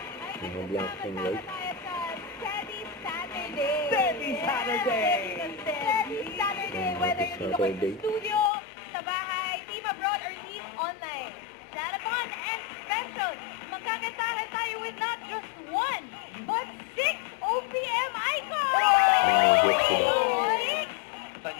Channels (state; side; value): drops out; right; at 8.5 s